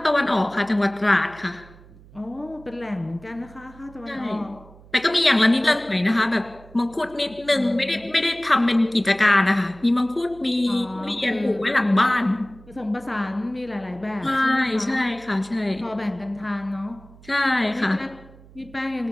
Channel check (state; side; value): noise; right; hum, 23 dB below the sound